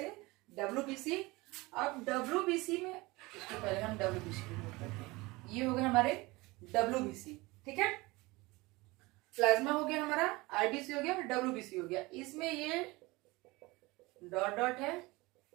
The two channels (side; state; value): left; quieter; 22.6 dB